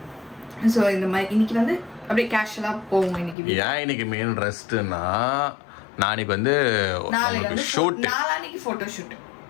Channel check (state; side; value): drops out; right; at 3.4 s